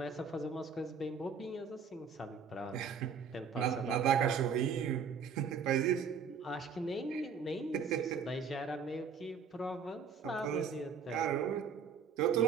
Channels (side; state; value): left; quieter; 6.0 dB